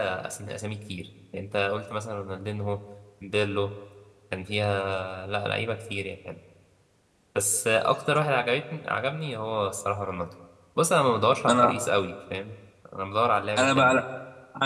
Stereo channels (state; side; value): identical; both; correlation 1.00